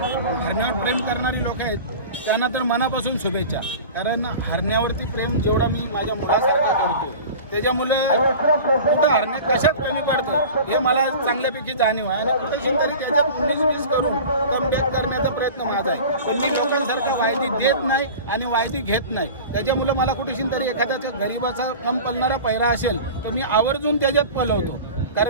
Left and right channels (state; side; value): inverted; both; correlation -0.36